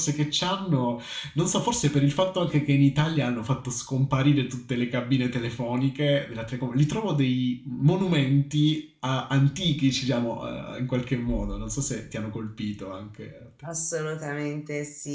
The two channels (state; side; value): identical; both; correlation 1.00